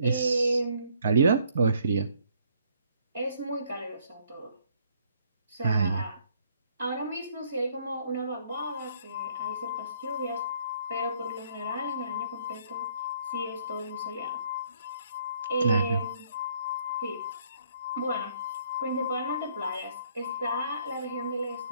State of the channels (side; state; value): both; inverted; correlation -0.64